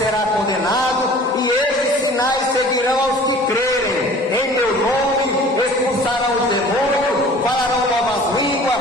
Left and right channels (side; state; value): both; normal; correlation 0.47